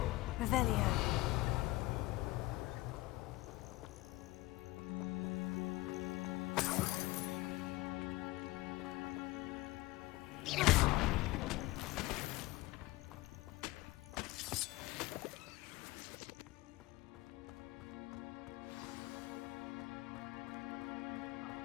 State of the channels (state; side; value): quieter; right; 19.6 dB